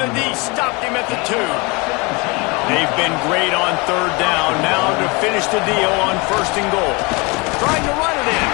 the D stopped him at the 2. They've been great on 3rd down. Now to finish the deal on 1st and goal. Trying to run it in.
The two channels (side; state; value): right; quieter; 27.7 dB